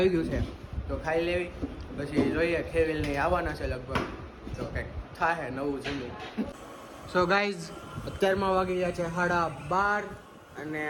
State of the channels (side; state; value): both; identical; correlation 1.00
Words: ગયું છે. તો ખાઈ લેવી, પછી જોઈએ. ખેવીલને આવવાના છે લગભગ, તો કંઈક થાય નવું જમવું. સો ગાઈઝ, અત્યારમાં વાગી ગયા છે 12:30 અને